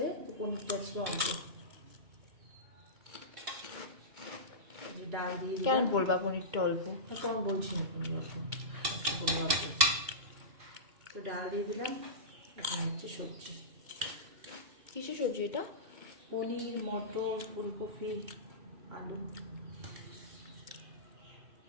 তো পনিরটা আজকে অল্প। ডাল দিয়ে কেন বলবা পনিরটা অল্প? তো আমি বলছি না পনির অল্প, আজকে বলবো অল্প। তো ডাল দিয়ে দিলাম, এখন হচ্ছে সবজি। কিসের সবজি এটা? পনির, মটর, ফুলকপি, আলু।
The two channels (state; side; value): late; left; 2.2 ms